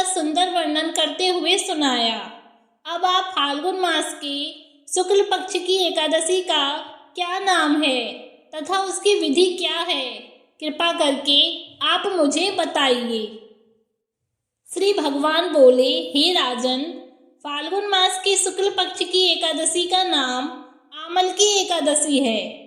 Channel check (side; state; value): both; identical; correlation 1.00